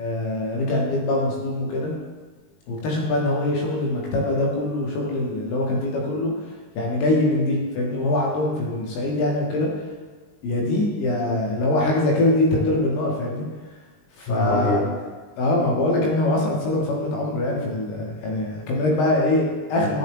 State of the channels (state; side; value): late; right; 20 ms